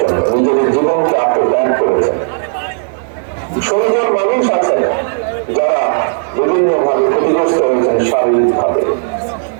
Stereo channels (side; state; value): left; silent; digital silence